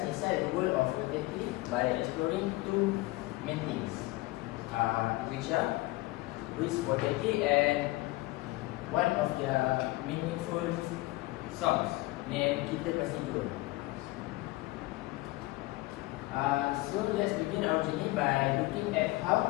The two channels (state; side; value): quieter; right; 20.4 dB